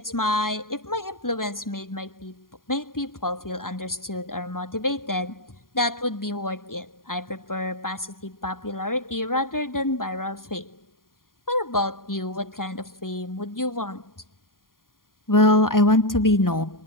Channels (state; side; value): late; right; 0.91 ms